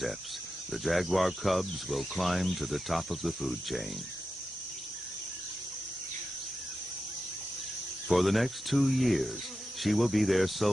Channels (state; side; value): normal; both; correlation 0.90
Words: the jaguar cubs will climb to the top of the food chain. For the next 2 years, she will be their